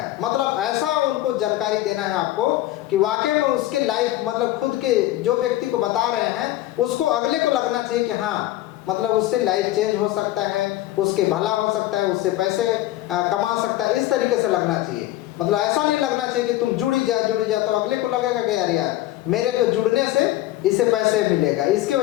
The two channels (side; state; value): right; quieter; 15.4 dB